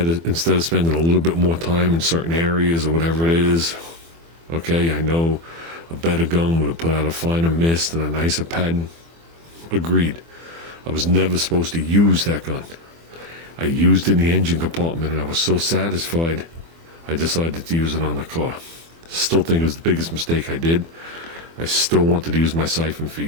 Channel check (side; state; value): left; late; 24 ms